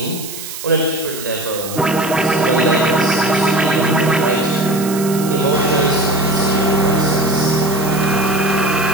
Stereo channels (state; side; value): noise; right; hiss, 10 dB below the sound